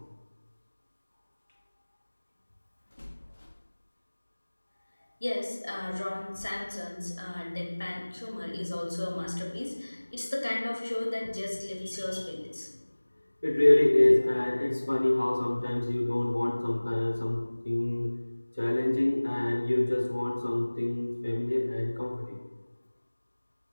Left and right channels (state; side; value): inverted; both; correlation -1.00